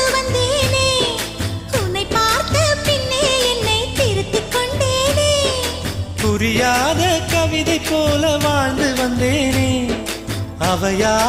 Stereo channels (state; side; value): identical; both; correlation 1.00